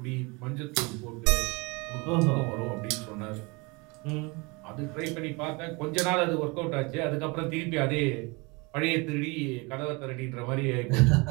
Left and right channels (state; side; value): quieter; left; 27.5 dB